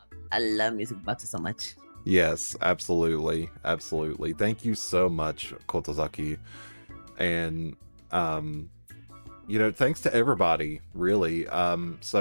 I love music boxes so much. Yes, absolutely. Thank you so much, Kotozaki. And you know, thanks to everybody, really.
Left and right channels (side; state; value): both; inverted; correlation -1.00